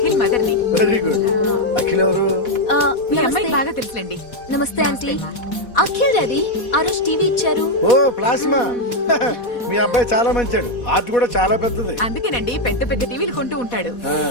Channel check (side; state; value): right; late; 4.1 ms